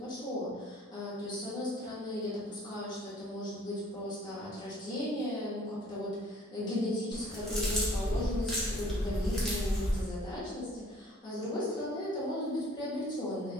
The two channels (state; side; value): normal; both; correlation 0.55